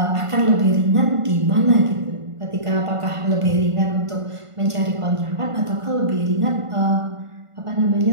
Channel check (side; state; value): left; late; 1.5 ms